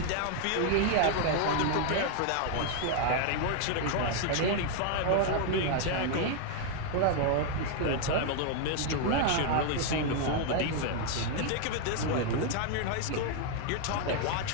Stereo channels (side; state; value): both; different; correlation 0.00